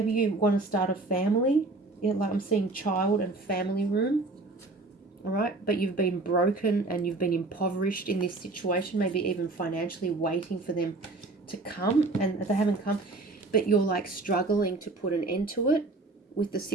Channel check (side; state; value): left; quieter; 3.3 dB